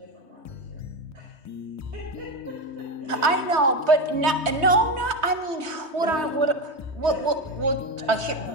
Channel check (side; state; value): left; late; 3.2 ms